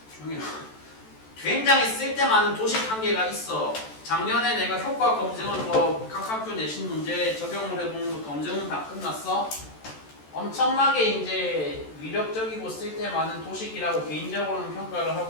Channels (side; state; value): right; late; 14 ms